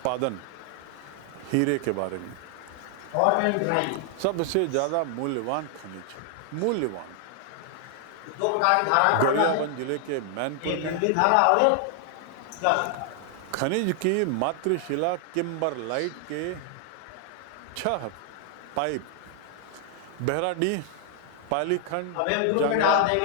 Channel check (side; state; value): both; different; correlation 0.00